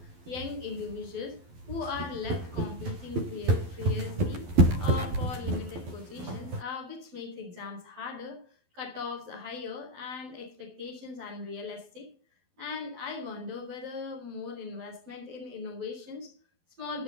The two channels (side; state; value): left; late; 12 ms